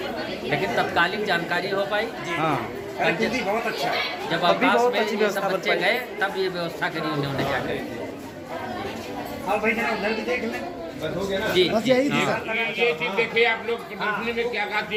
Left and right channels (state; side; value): identical; both; correlation 1.00